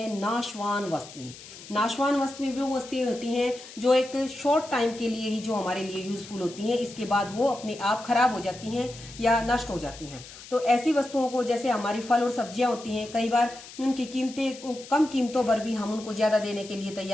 नाशवान वस्तुएं। नाशवान वस्तुएं वो वस्तुएं होती हैं जो एक शॉर्ट टाइम के लिए ही जो हमारे लिए यूजफुल होती हैं, इसके बाद वो अपने आप खराब हो जाती हैं या नष्ट हो जाती हैं। तो ऐसी वस्तुओं को, जैसे हमारी फल और सब्जियां होती हैं, कई बार उनकी कीमतें कम कीमतों पर भी हम उनको ज्यादा देने के लिए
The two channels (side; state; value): left; noise; hiss, 16 dB below the sound